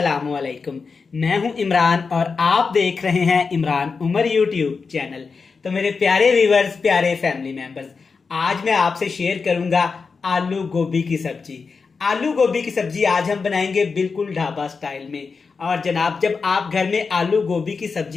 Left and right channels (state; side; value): quieter; right; 4.9 dB